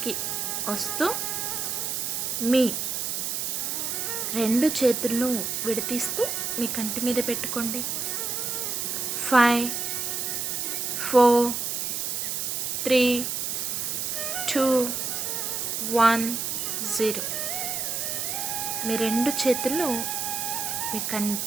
వస్తూ మీ రెండు చేతులను విడతీస్తూ మీ కంటి మీద పెట్టుకోండి. 5 4 3 2 1 0. మీ రెండు చేతులను మీ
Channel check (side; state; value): right; noise; hiss, 1 dB below the sound